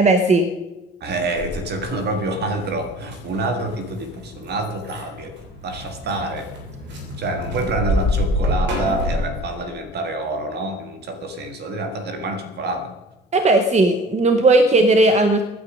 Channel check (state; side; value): normal; both; correlation 0.44